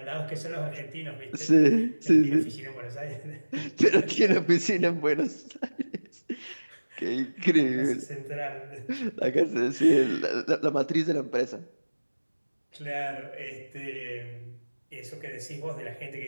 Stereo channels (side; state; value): both; inverted; correlation -1.00